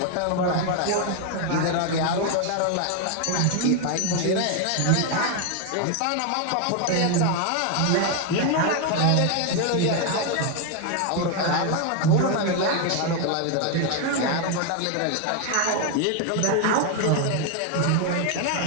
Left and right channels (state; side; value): different; both; correlation 0.01